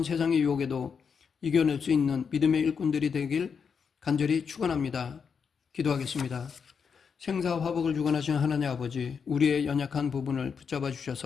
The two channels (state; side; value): quieter; right; 6.3 dB